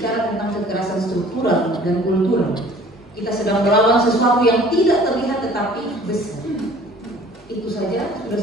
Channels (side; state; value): both; normal; correlation 0.50